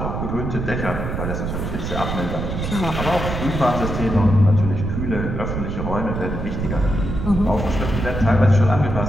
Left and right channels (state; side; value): noise; right; rumble, 3 dB below the sound